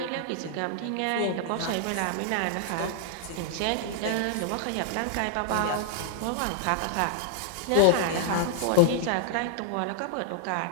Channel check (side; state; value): both; different; correlation 0.00